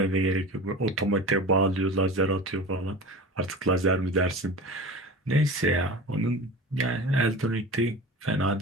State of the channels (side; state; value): both; normal; correlation 0.33